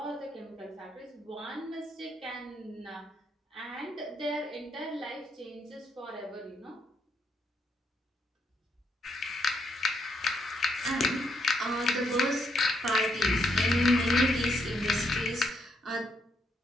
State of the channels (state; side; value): normal; both; correlation 0.76